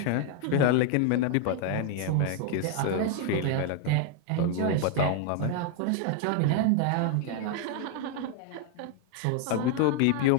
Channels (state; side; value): different; both; correlation 0.00